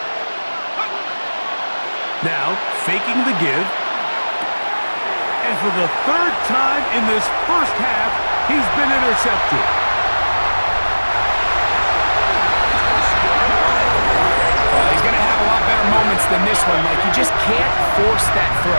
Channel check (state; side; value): inverted; both; correlation -1.00